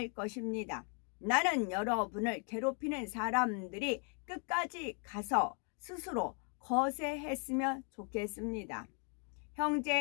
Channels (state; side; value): quieter; right; 39.2 dB